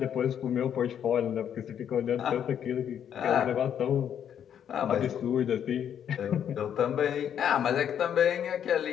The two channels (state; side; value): quieter; right; 9.1 dB